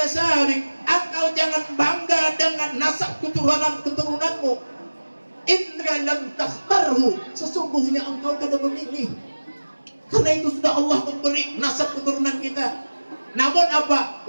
Engkau jangan bangga dengan nasab keturunanmu. Indra lam takhtarhu, sesungguhnya engkau kada memilih. Karena itu sudah Allah memberi nasab keturunan kita. Namun apa?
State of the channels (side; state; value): both; inverted; correlation -1.00